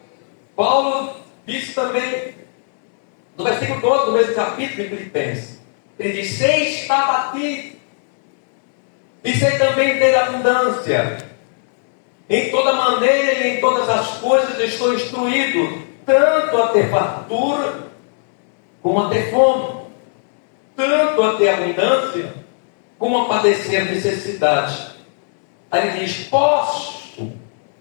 Paulo disse também, no versículo 12 do mesmo capítulo de Filipenses, ele diz: sei estar batido, e sei também ter abundância. Em toda maneira e em todas as coisas estou instruído, tanto a ter fartura, como a ter fome, tanto a ter abundância, como a padecer necessidade. Aí ele diz: posso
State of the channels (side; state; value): right; silent; digital silence